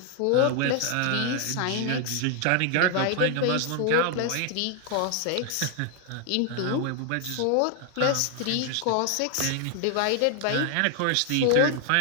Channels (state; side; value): different; both; correlation 0.00